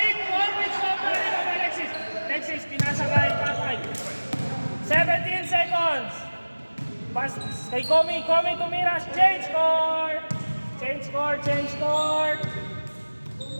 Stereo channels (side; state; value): both; inverted; correlation -1.00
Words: Sobra rin ang Alexis. Pinasa kay Papay. 17 seconds. Pass kay Komi. Tumira. Change score.